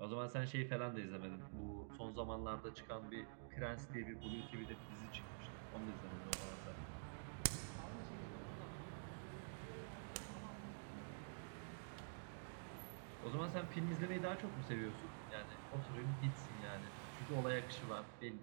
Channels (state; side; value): silent; left; digital silence